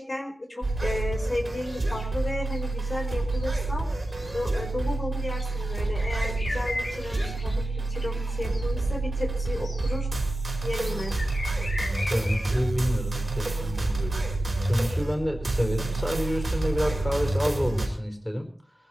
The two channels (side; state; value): both; normal; correlation 0.93